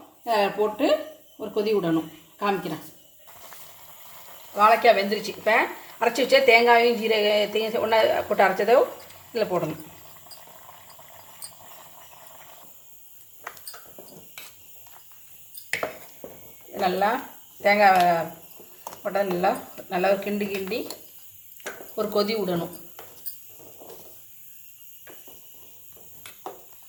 போட்டு ஒரு கொதி விடணும். காமிக்கிறேன். வாழைக்காய் வெந்துருச்சு. இப்போ அரைச்சி வச்சா தேங்காயும் ஜீரகத்தையும் ஒன்றா போட்டு அரைச்சதோ இதில் போடணும். நல்லா தேங்காய் போட்டால் நல்லா ஒரு கிண்டி ஒரு கொதி விடணும்.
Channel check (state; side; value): identical; both; correlation 1.00